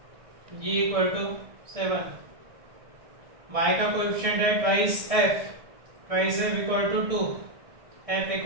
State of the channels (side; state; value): left; late; 1.6 ms